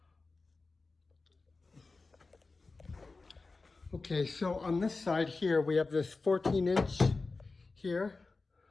this side here, we have this 14 inch here.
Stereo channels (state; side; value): quieter; right; 3.8 dB